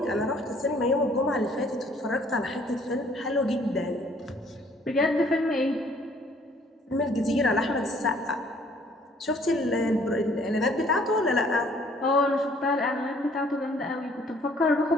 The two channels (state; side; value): normal; both; correlation 0.60